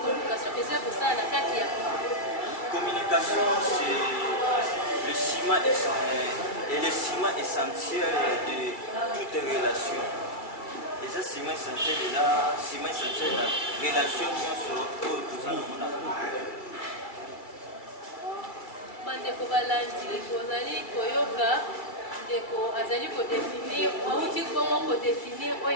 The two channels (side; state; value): right; late; 2.2 ms